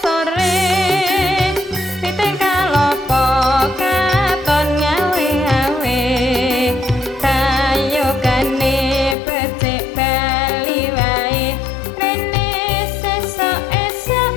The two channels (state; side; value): drops out; right; at 9.2 s